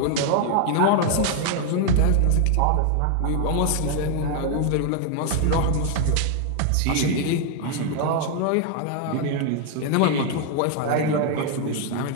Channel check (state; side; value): different; both; correlation 0.00